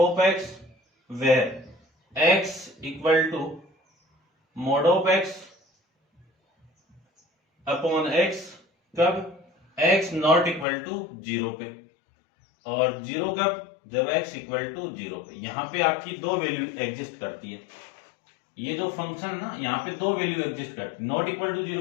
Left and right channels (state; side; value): drops out; right; at 10.7 s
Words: of x where x equal to mod of x upon x, कब x नॉट इक्वल टू 0 पे, और 0 कब, जब x इक्वल टू 0 पे। यहां पे आपकी दो वैल्यू एग्जिस्ट करती है, ये जो फंक्शन है ना यहाँ पे दो वैल्यू एग्जिस्ट करती है। नॉट इक्वल टू